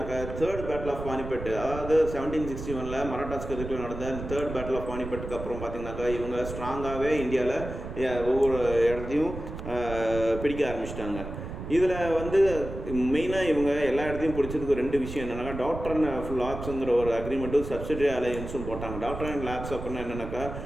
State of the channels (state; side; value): noise; right; rumble, 8 dB below the sound